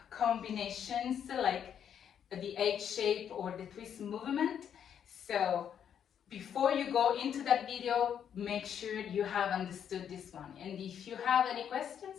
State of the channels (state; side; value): quieter; right; 8.7 dB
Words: combinations like the H shape or the twist movement. So before you go into that video, make sure you have understood this one. And if you have any